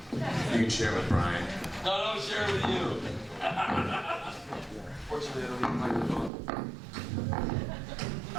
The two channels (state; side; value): drops out; left; at 6.3 s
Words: You can share with Bryan. No, share with you. Fortunately, I don't need a microphone.